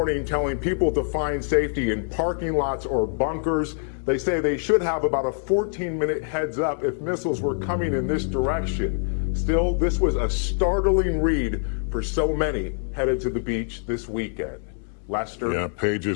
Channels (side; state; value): right; silent; digital silence